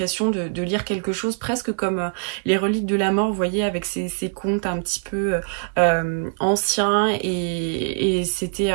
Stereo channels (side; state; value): left; silent; digital silence